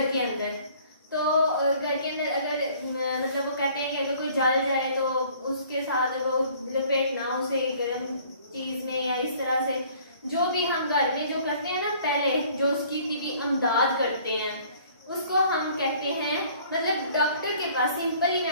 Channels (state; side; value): inverted; both; correlation -0.55